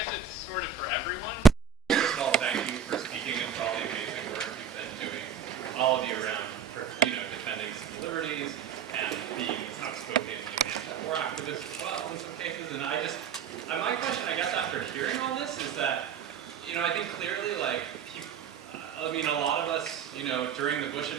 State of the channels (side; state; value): left; quieter; 7.0 dB